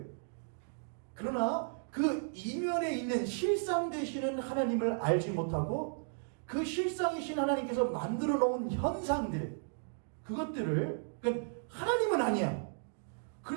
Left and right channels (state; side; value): silent; left; digital silence